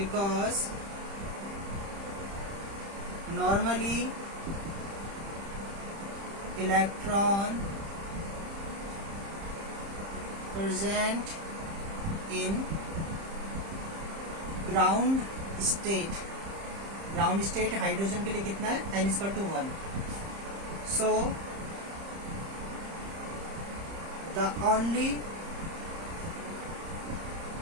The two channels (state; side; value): late; left; 30 ms